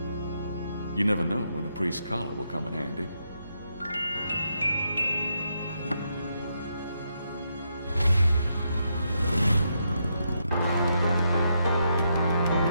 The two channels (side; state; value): both; inverted; correlation -0.80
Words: You never know when a priest's collar will come in handy.